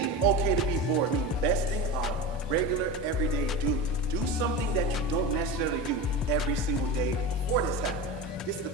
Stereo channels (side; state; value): both; normal; correlation 0.26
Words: okay to be bored means besting our regular, everyday duty. Do something that you don't necessarily do every single day before this happened. this is the